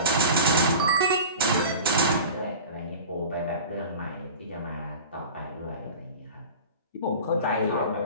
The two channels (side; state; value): both; inverted; correlation -0.35